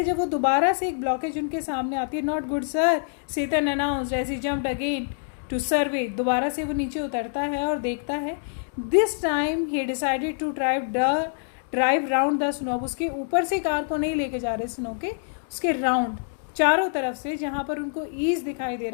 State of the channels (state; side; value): silent; right; digital silence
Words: जब वो दोबारा से एक ब्लॉकेज उनके सामने आती है, not good sir, Satan announced as he jumped again to survey. दोबारा से वो नीचे उतरता है और देखता है. This time he decided to drive round the snow. उसके ऊपर से कार को नहीं लेके जा रहे स्नो के, उसके राउंड चारों तरफ से जहाँ पर उनको ईज दिखाई दे